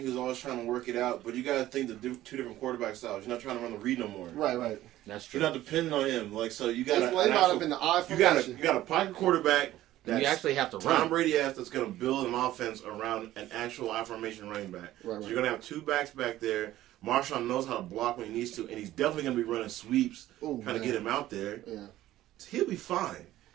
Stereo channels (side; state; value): left; quieter; 14.6 dB